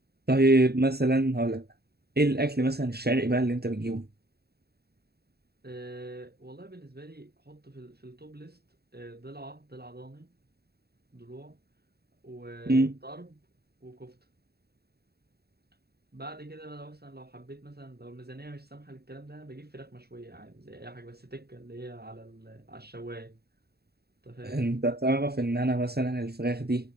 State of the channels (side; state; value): left; late; 0.46 ms